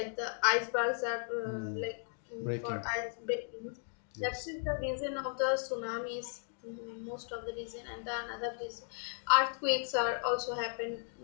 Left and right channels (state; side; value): silent; right; 54 dB below the other